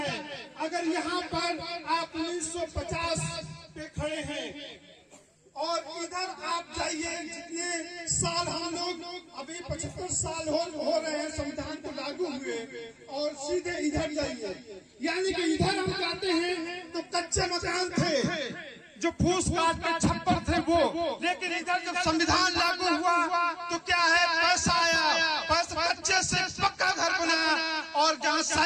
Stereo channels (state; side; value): identical; both; correlation 1.00